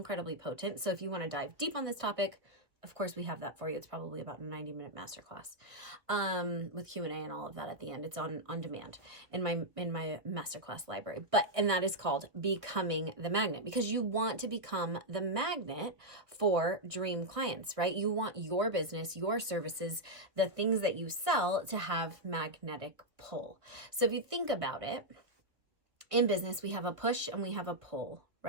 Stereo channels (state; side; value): late; left; 1.5 ms